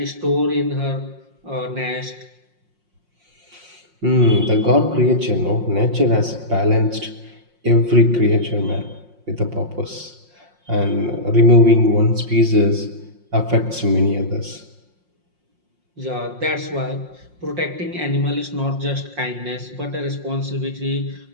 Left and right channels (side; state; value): left; late; 5.6 ms